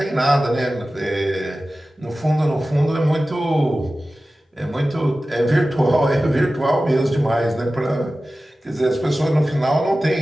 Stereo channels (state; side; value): normal; both; correlation 0.95